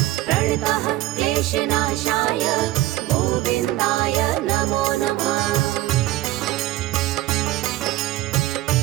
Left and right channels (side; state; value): left; quieter; 16.0 dB